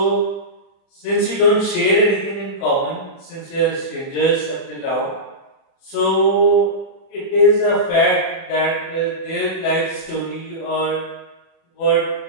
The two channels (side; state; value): right; late; 37 ms